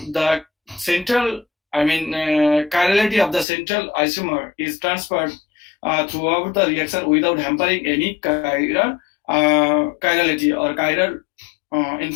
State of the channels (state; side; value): drops out; right; at 3.5 s